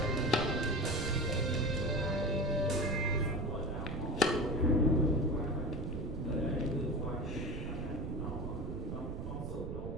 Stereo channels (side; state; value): right; noise; rumble, 5 dB below the sound